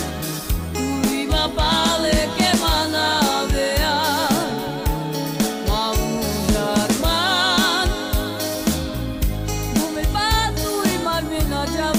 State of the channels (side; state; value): both; identical; correlation 1.00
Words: tu viva pale que manavea Maujar man Dume patu e marvina